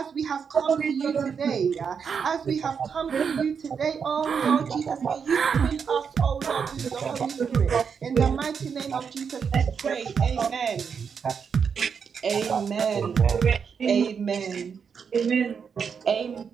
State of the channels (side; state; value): left; quieter; 6.5 dB